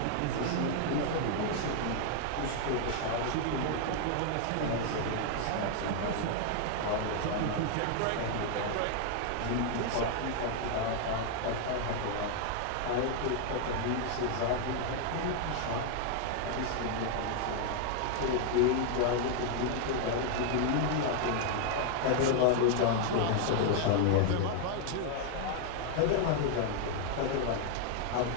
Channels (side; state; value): both; different; correlation 0.00